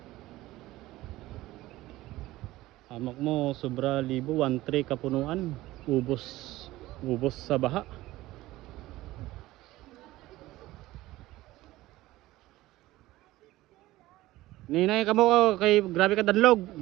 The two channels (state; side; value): quieter; left; 17.3 dB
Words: Amak mo sobra libo 1-3 kapunuan. Ubos sa baha. Ninay ka mo kay grabe ka danlog.